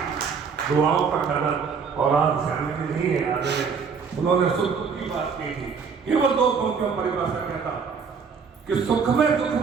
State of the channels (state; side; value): quieter; left; 5.8 dB